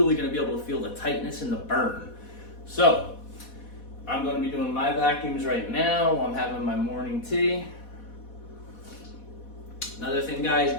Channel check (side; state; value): right; late; 4.1 ms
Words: going to be able to feel the tightness and the burn. So, I'm going to be doing my vacuums right now while I'm having my morning tea. Another thing, guys,